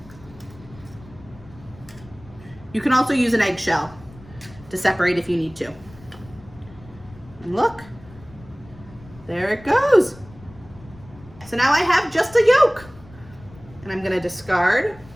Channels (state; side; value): noise; left; rumble, 21 dB below the sound